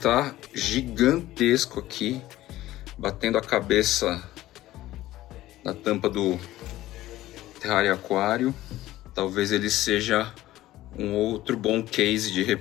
gigantesco aqui, batendo a cabeça na tampa do terrário aquário. Talvez ele seja um outro bom case de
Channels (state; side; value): quieter; right; 15.5 dB